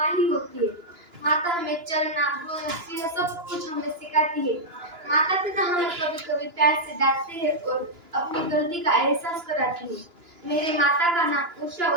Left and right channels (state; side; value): late; left; 2.9 ms